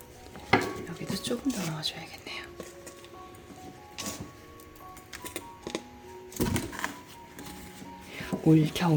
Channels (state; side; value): identical; both; correlation 1.00